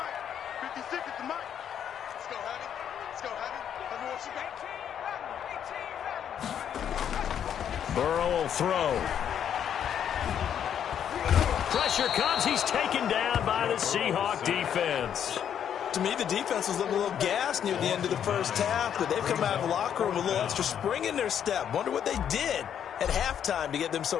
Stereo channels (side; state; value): right; quieter; 9.0 dB